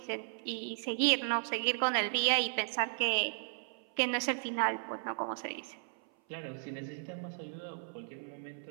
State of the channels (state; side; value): silent; left; 54 dB below the other